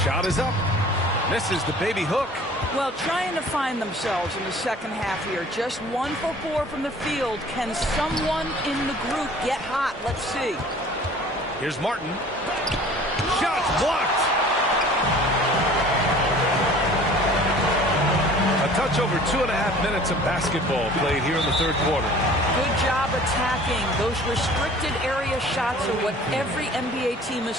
Shot is up. Misses the baby hook. Well, trying to find themselves in the second half here. Just 1 for 4 from the field. Can someone in the group get hot? Let's see. Here's Martin. Shots blocked. A touch over 2.5 minutes of basketball played here in the third quarter. Good job attacking. Those restricted area shots are what every NBA team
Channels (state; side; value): normal; both; correlation 0.48